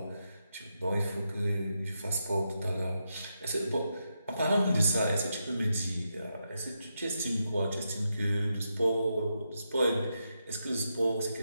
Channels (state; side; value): inverted; both; correlation -0.84